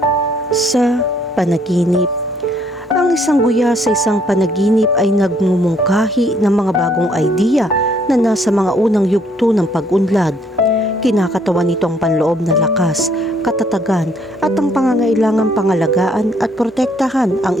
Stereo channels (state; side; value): normal; both; correlation 0.66